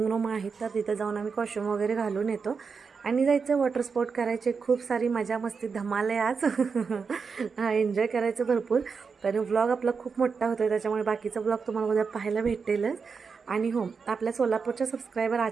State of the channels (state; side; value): quieter; left; 5.4 dB